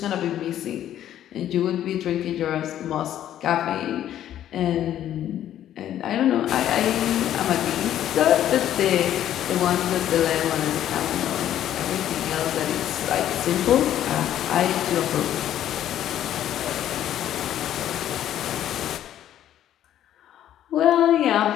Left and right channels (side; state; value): right; quieter; 11.5 dB